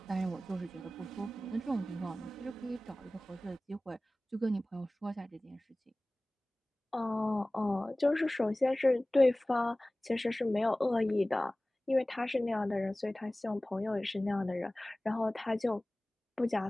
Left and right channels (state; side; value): normal; both; correlation 0.98